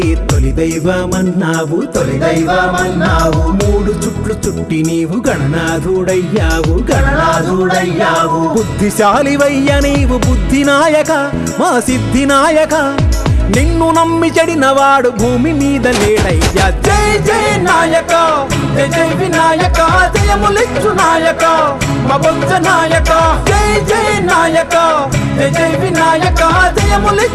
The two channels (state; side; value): identical; both; correlation 1.00